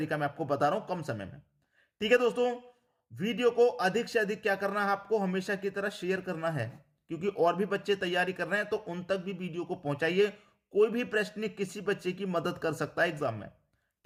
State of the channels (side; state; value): both; identical; correlation 1.00